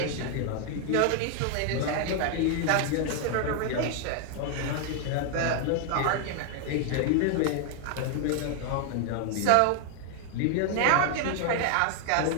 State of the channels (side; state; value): both; different; correlation 0.00